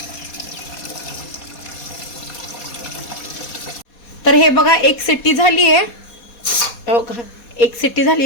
तर हे बघा 1 शिट्टी झाली आहे. 1 शिट्टी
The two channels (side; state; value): right; late; 4.2 ms